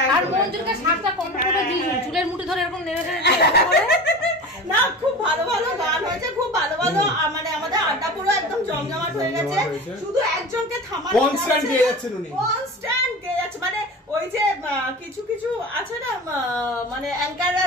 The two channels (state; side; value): normal; both; correlation 0.33